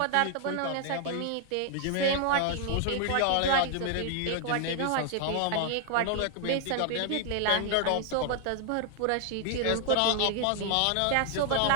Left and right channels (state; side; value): different; both; correlation 0.00